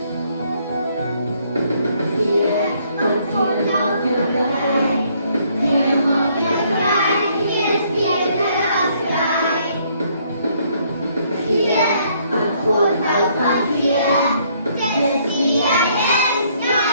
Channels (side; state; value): both; inverted; correlation -0.67